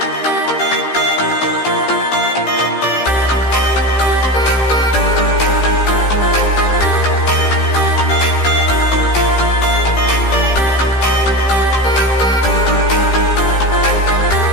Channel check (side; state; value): right; late; 15 ms